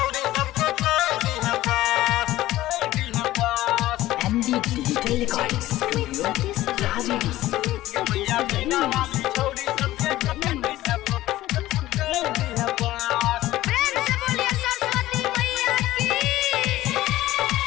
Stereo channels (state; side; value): quieter; right; 15.7 dB